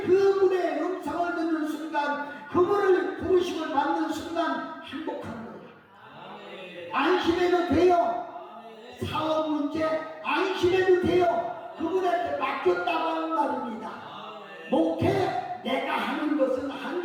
그분의 음성을 듣는 순간, 그분을 부르심을 받는 순간 행복한 거예요. 안심해도 돼요. 사업 문제 안심해도 돼요. 그분한테 맡겼다고 하는 말입니다. 목회 내가 하는 것은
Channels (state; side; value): identical; both; correlation 1.00